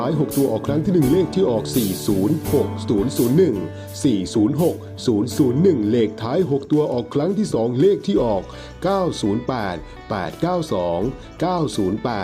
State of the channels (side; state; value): both; identical; correlation 1.00